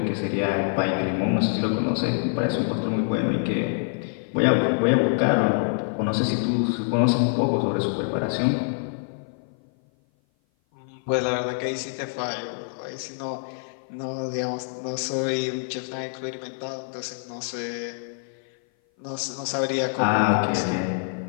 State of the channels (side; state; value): right; silent; 56 dB below the other